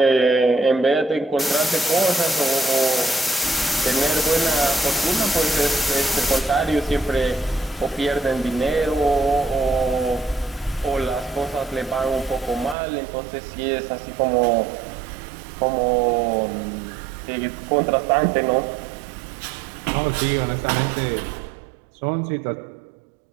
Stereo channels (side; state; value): left; drops out; at 12.8 s